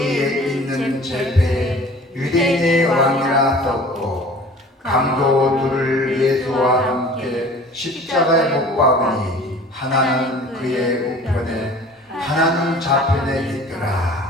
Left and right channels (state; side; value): normal; both; correlation 0.46